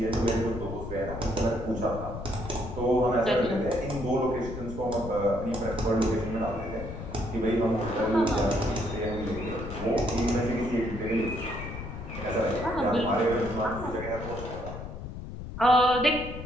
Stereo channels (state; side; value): noise; left; rumble, 9 dB below the sound